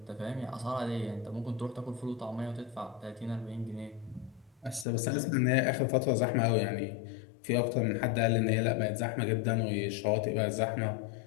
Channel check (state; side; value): drops out; right; at 4.9 s